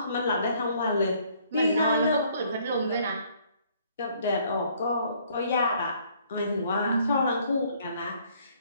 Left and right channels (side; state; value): both; inverted; correlation -0.63